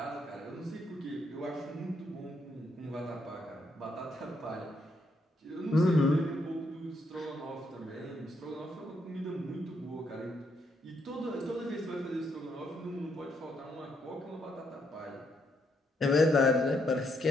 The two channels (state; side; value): normal; both; correlation 0.76